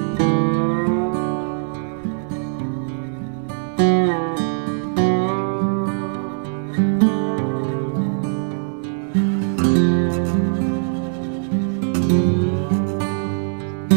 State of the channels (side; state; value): left; silent; digital silence